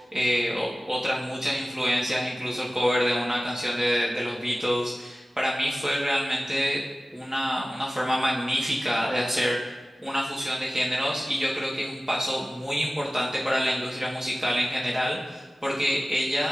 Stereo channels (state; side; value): normal; both; correlation 0.96